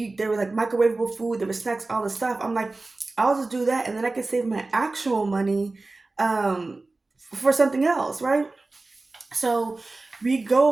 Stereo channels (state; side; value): quieter; left; 3.3 dB